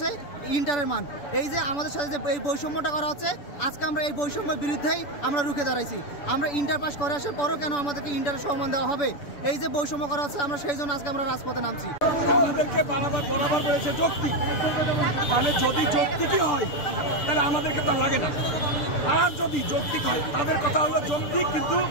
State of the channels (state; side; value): late; right; 6.9 ms